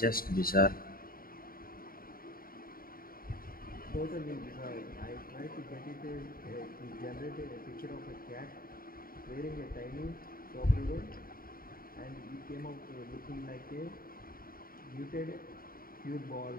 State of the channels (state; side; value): late; right; 0.42 ms